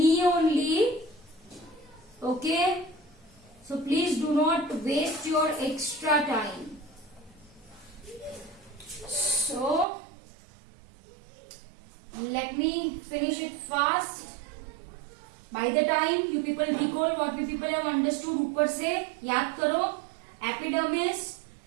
only. Okay. So please do not waste your extra time. So let me finish it fast. By the time you people recall what we people have understood, ऊपर से याद करो. Epidermis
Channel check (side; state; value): left; drops out; at 9.9 s